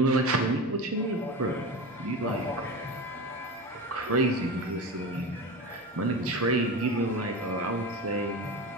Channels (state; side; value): normal; both; correlation 0.26